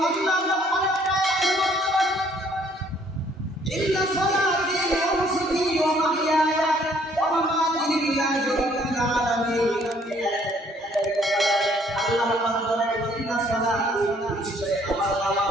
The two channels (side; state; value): both; normal; correlation 0.62